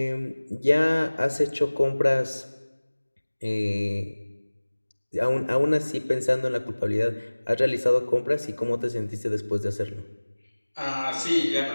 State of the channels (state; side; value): inverted; both; correlation -1.00